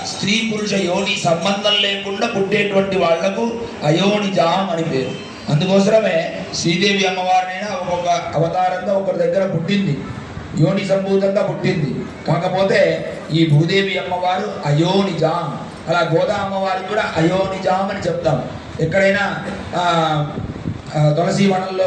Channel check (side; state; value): both; identical; correlation 1.00